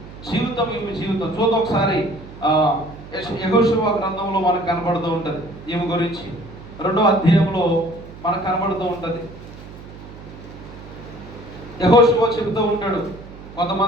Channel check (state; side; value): noise; right; hum, 16 dB below the sound